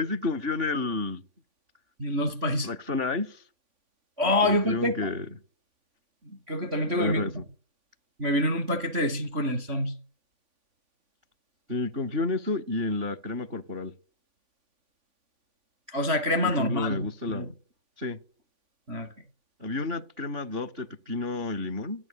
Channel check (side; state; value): left; late; 3.5 ms